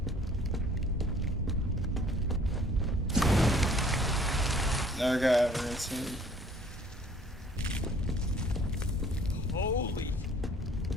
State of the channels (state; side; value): normal; both; correlation 0.56